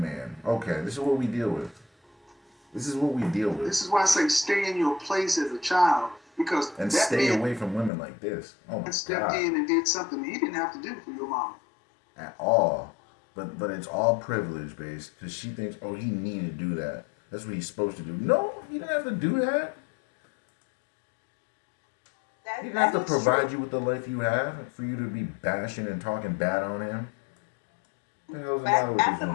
man. Okay, this is what we deal with. This is what we deal with. This is why I say stay in your place as a child, because And that stay man away from women like this. Oh my stepped God. in and did something he didn't have to do for your mama. At all. But it's all privilege based because she thinks, oh, he needed to do that. That's what he's supposed to do. No, he didn't have to do that. He didn't have to provide you with the life you have for you to be bashing and talking bad on him. What the hell's the matter with At this the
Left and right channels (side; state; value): right; drops out; at 7.9 s